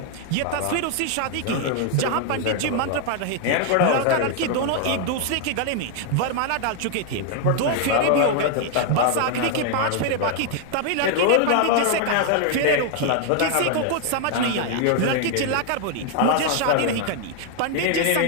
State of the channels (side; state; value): both; different; correlation 0.00